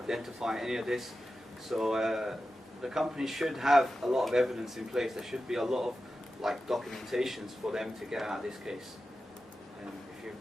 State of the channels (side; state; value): both; normal; correlation 0.92